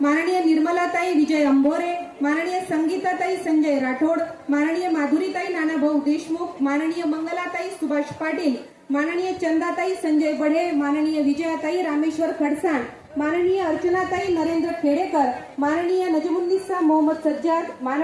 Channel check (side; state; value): both; identical; correlation 1.00